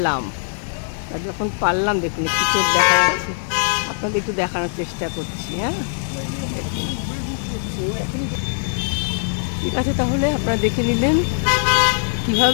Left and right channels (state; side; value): silent; right; 63 dB below the other